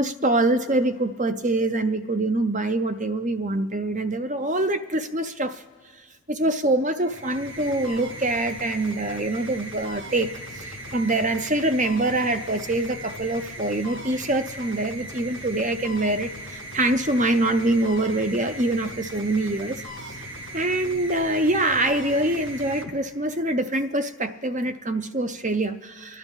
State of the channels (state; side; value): normal; both; correlation 0.37